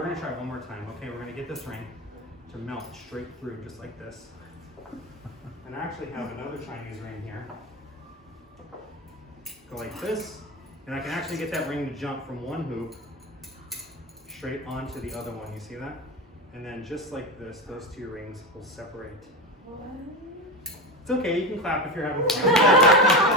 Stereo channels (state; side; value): normal; both; correlation 0.20